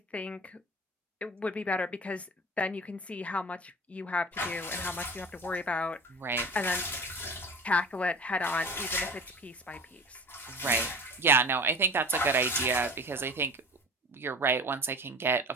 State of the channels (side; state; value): both; normal; correlation 0.36